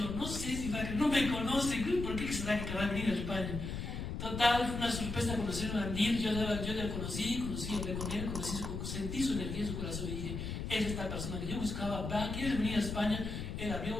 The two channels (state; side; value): noise; left; rumble, 5 dB below the sound